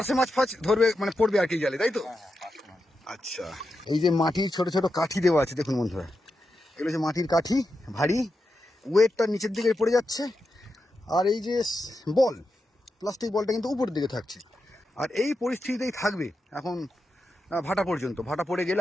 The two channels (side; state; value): both; normal; correlation 0.88